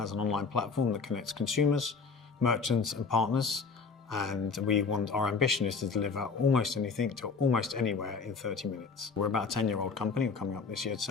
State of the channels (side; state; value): right; quieter; 4.9 dB